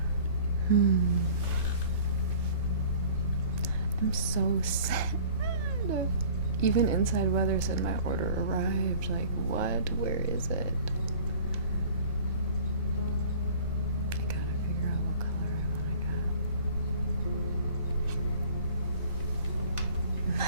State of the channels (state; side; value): inverted; both; correlation -0.47